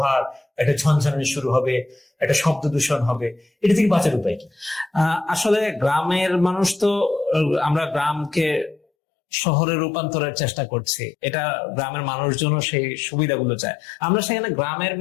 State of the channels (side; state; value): right; drops out; at 8.8 s